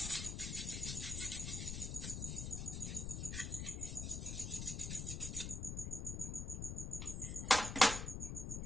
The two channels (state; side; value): noise; left; rumble, 3 dB below the sound